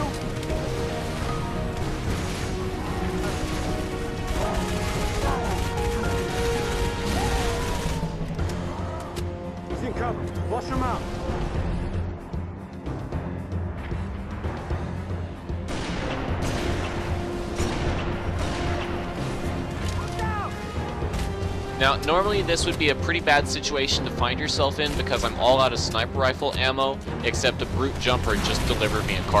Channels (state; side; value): identical; both; correlation 1.00